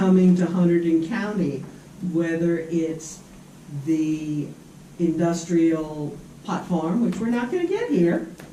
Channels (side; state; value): both; identical; correlation 1.00